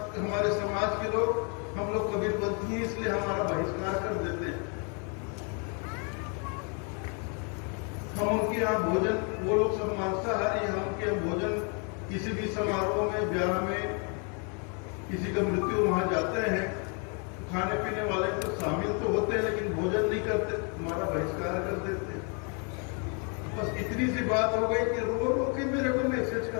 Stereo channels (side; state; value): right; quieter; 37.3 dB